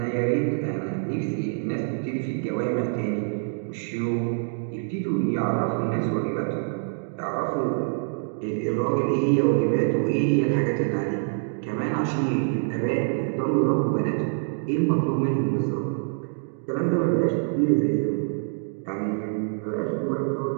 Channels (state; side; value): silent; left; 61 dB below the other